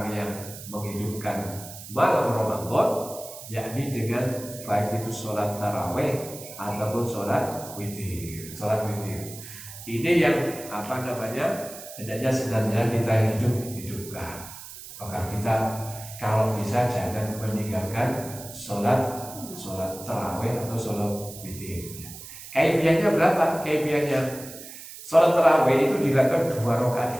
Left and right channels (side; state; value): right; noise; hiss, 14 dB below the sound